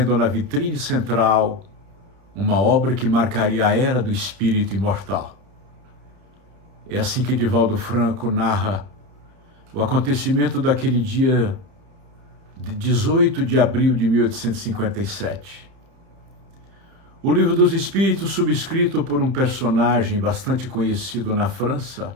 na vitrine central uma obra que marcaria a era do espírito imortal. É assim que Divaldo Franco narra o acontecimento daquele dia de 18 de abril de 1857. O Livro dos Espíritos, subscrito por um personagem bastante conhecido na França,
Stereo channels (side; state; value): left; late; 30 ms